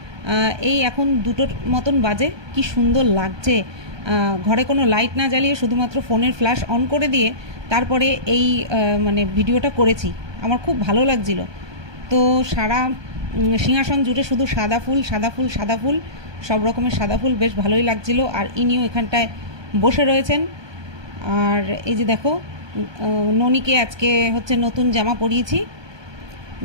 এই এখন 2টোর মতন বাজে। কি সুন্দর লাগছে, ঘরে কোনো লাইট না জ্বালিয়ে শুধুমাত্র ফোনের ফ্ল্যাশ অন করে দিয়ে তারপরে এই মানে ভিডিওটা করেছি। আমার খুব ভালো লাগছিল। তো সারা সিংহাসন জুড়ে শুধু সাদা ফুল সাদা ফুল সাদা ফুল, সব রকমের সাদা ফুল, বেশ ভালোই লাগছিল। আর ইনিও এখানটায় বসে রয়েছেন। আর এই যে দেখো, ননিকে আজকে হচ্ছে নতুন জামা পরিয়েছি,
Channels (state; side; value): late; left; 1.2 ms